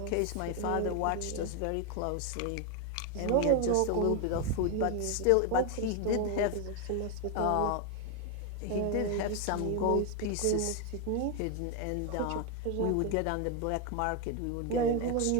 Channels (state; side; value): different; both; correlation 0.01